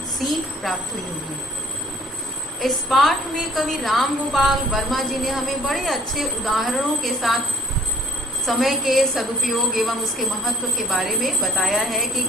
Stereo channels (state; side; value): normal; both; correlation 0.58